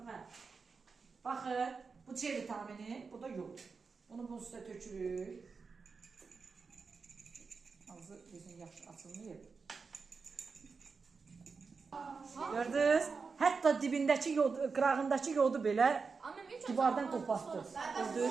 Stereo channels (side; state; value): left; quieter; 4.9 dB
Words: Hə. Baxın, bu C vitamini, bu da yod. Onu bunun üstə tökürük. Ağzı bizim yaxşı açılmayıb. Gördünüz? Hətta dibindəki yod, qırağındakı yodu belə divardan qopartdı.